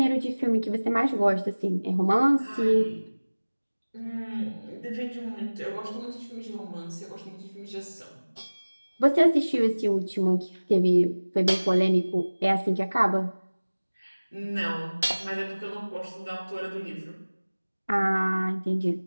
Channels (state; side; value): inverted; both; correlation -1.00